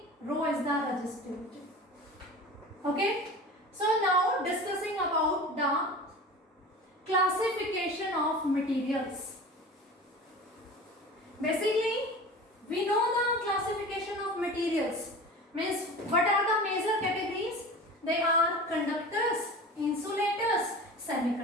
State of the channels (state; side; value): normal; both; correlation 0.36